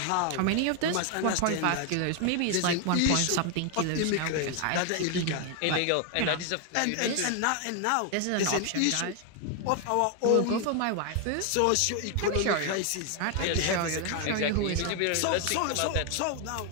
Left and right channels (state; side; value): different; both; correlation 0.01